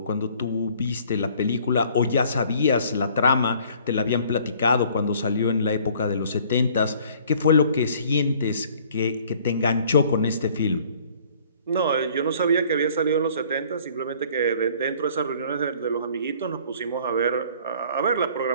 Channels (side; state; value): both; inverted; correlation -0.56